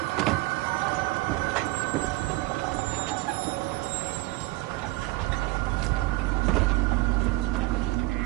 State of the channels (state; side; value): quieter; left; 20.1 dB